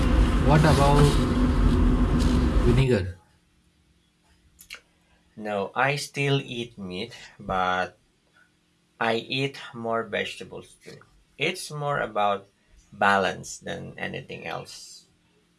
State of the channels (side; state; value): both; identical; correlation 1.00